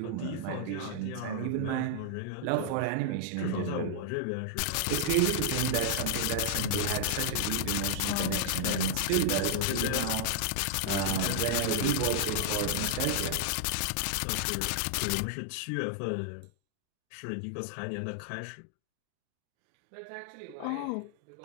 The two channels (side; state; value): both; different; correlation -0.01